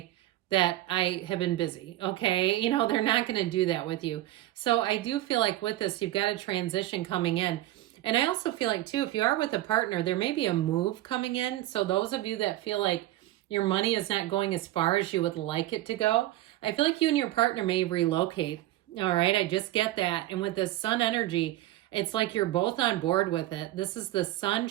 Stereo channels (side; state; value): left; quieter; 15.6 dB